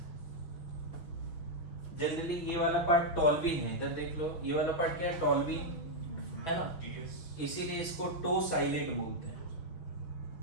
जनरली ये वाला पार्ट टॉल्विन है, इधर देख लो, ये वाला पार्ट क्या है? टॉल्विन है ना, इसीलिए इसको टो साइलेट बोलते हैं,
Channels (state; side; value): late; right; 6.0 ms